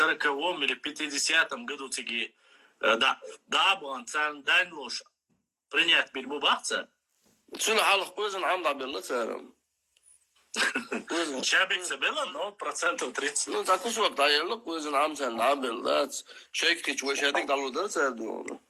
или 50-м году тиги да был цан данлош принять бильбубахца. شنو حالك كويزن عم بالله سارم Чабик забила, но процентов 30. Ну так уж вот даёло كويزن عم سان بالله شيك كيش وش هذيك دالو ده سادو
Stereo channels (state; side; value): identical; both; correlation 1.00